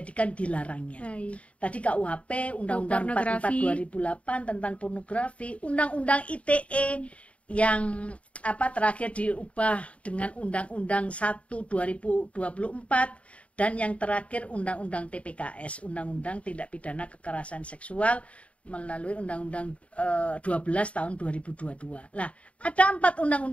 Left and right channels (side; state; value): right; late; 0.064 ms